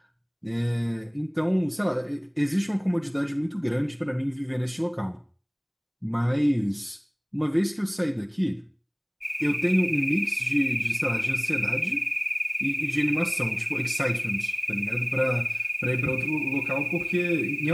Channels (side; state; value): both; identical; correlation 1.00